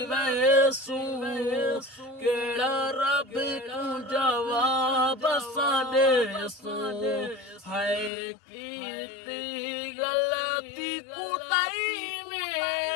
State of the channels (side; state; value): right; drops out; at 8.1 s